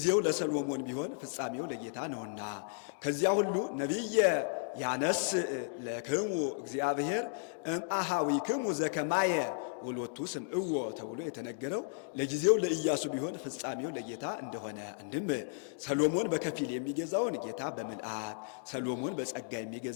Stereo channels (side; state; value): right; silent; digital silence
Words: ለሰሎሞን ቢሆን ፍጻሜው ለጌታ ነውና። ከዚያ ሁሉ ነቢየ ያነስ ለክሙ እግዚአብሔር እምአሃዊክሙ ዘከማየ ወሎቱ ስምዕዎ ተብሎ የተነገረው ለጊዜው ለኢያሱ ቢሆን ፍጻሜው ለጌታ እንደሆነ፣ አንድም ሰሎሞን በከፊል የሚገዛውን ጌታ በምልአት፣ ሰሎሞን በጸጋ